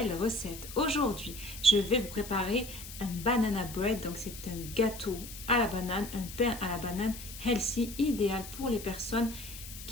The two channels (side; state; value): left; noise; hiss, 12 dB below the sound